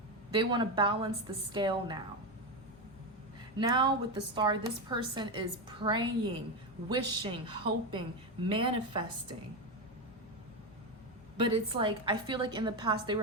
They want to balance the scale now. Now with the Star, this person is praying, wishing, hoping, manifesting. But it's like, I feel like in the past, they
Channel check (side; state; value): both; normal; correlation 0.13